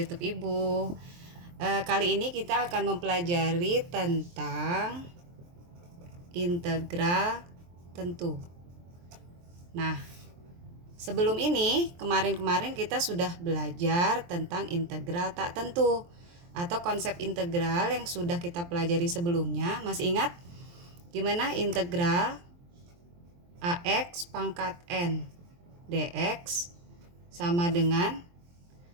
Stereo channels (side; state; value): left; late; 23 ms